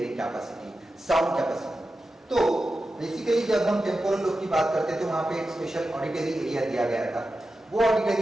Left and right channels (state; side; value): normal; both; correlation 0.92